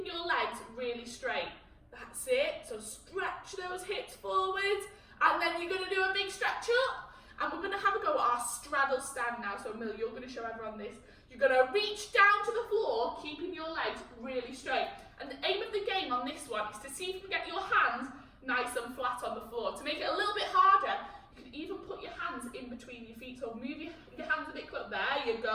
your legs really straight. That's it. So stretch those hips forwards. And then you're going to do a big stretch up. And we're going to have a go at our straddle stand now. So Mill, you're going to show everyone this. You're going to reach down to the floor, keeping your legs really straight. And the aim of the game on this one is to see if you can get your hands nice and flat on the floor. To make it a little bit harder, you can even put your hands in between your feet. So move your hands a bit close. There you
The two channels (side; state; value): both; identical; correlation 1.00